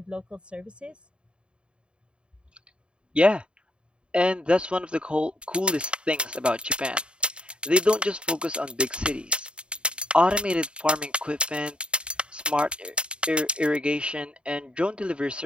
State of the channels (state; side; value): late; left; 0.054 ms